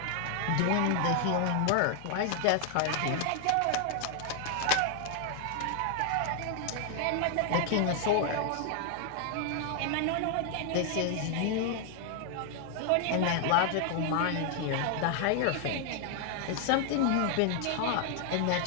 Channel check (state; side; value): different; both; correlation 0.00